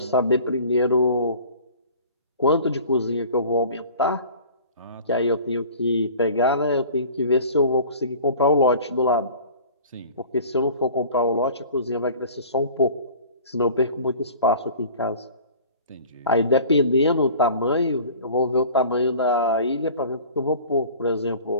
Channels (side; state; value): both; inverted; correlation -0.44